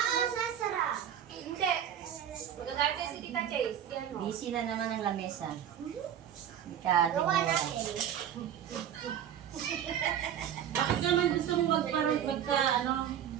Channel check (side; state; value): left; quieter; 9.8 dB